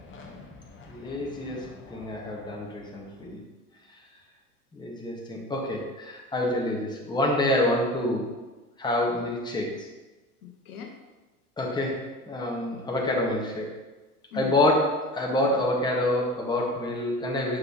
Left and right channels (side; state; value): both; normal; correlation 0.36